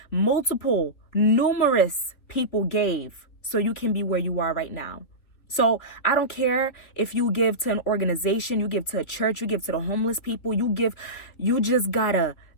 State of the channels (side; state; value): right; late; 3.5 ms